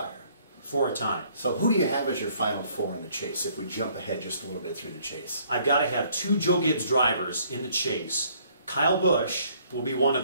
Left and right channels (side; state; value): both; inverted; correlation -0.62